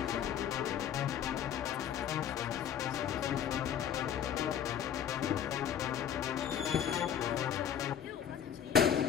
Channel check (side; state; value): right; quieter; 9.1 dB